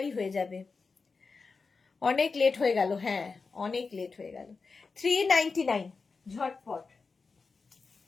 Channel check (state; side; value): quieter; right; 4.5 dB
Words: হয়ে যাবে। অনেক লেট হয়ে গেল, হ্যাঁ অনেক লেট হয়ে গেল। 399 ঝটপট,